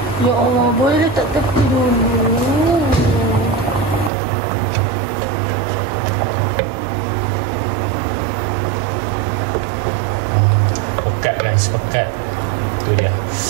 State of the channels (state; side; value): drops out; left; at 4.1 s